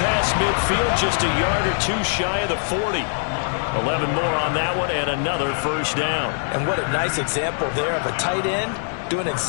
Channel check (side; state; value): right; silent; 64 dB below the other